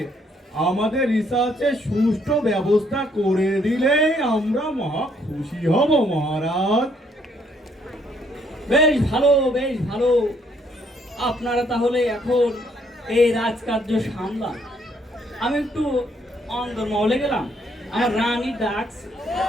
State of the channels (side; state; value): both; normal; correlation 0.68